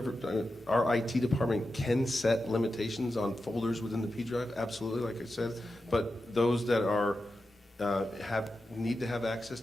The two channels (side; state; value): both; normal; correlation 0.90